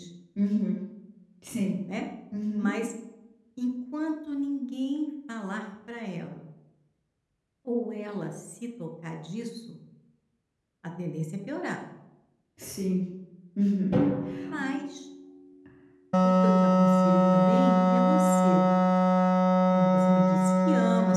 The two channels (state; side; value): identical; both; correlation 1.00